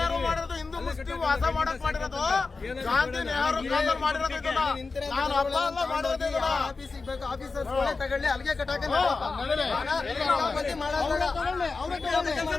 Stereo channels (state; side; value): quieter; right; 4.1 dB